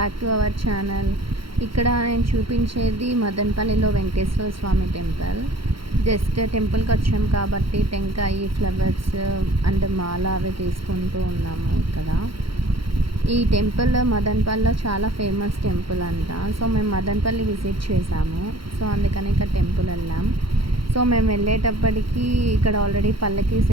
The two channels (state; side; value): late; left; 0.74 ms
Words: to our channel. ఇక్కడ నేను చూపించేది మదనపల్లిలో వెంకటేశ్వర స్వామి టెంపుల్. జస్ట్ టెంపుల్కి వచ్చాం కాబట్టి టెంకాయ, ఫ్లవర్స్ అండ్ మాల అవి తీసుకుంటూ ఉన్నాము. ఇక్కడ ఈ టెంపుల్ మదనపల్లిలో చాలా ఫేమస్ టెంపుల్ అంట. సో మేము మదనపల్లి విజిట్ చేసాము. సో అందుకని ఇక్కడ టెంపుల్ వెళ్ళాం. సో మేము వెళ్ళేటప్పటికి ఇక్కడ ఆల్రెడీ పల్లకి